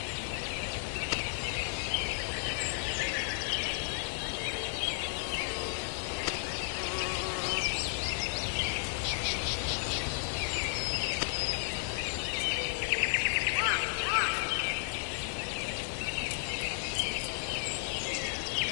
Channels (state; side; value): silent; right; digital silence